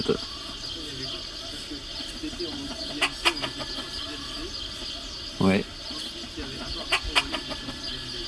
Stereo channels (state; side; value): identical; both; correlation 1.00